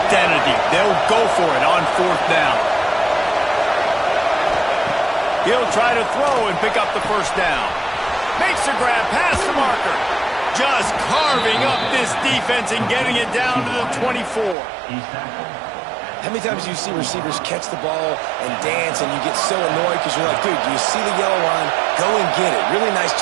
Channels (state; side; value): drops out; left; at 14.6 s